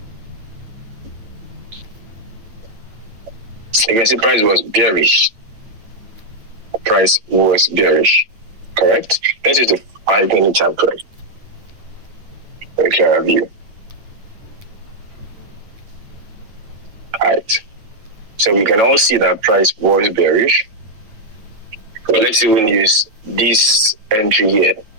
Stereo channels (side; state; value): left; late; 9.0 ms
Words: You can see price was bearish. Price was bearish. correct? This is the 5-minute time frame. Very clear view. Alright. So we can all see that price was bearish. But let's even use this entry here.